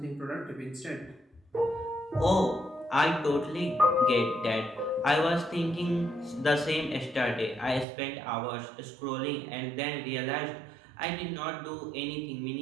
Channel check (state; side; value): drops out; left; at 7.9 s